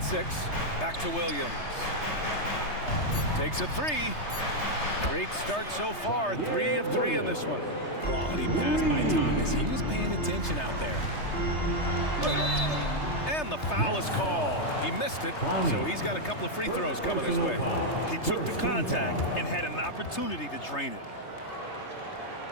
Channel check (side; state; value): right; late; 3.3 ms